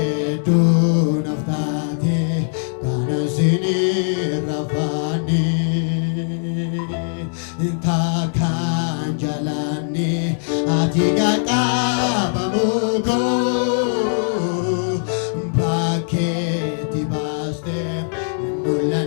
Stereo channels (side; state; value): right; silent; digital silence